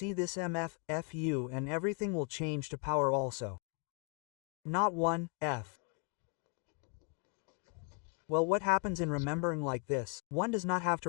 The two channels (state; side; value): quieter; right; 36.5 dB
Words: this MF, FU and everything will change to power also. Not 1, F. Well, what happens in remembering like this? One does not have to